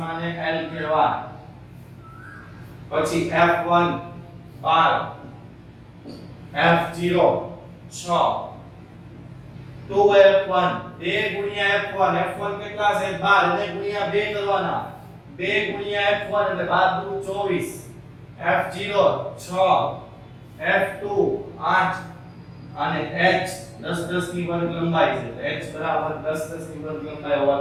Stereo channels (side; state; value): both; identical; correlation 1.00